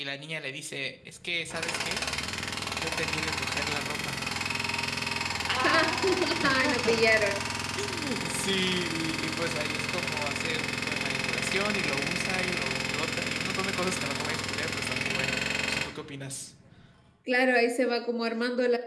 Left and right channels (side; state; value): both; identical; correlation 1.00